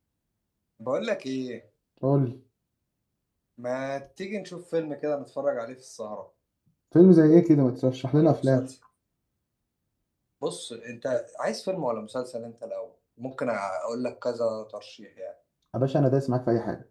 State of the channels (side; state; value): both; identical; correlation 1.00